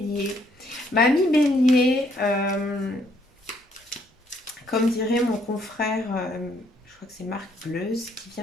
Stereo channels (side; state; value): both; normal; correlation 0.68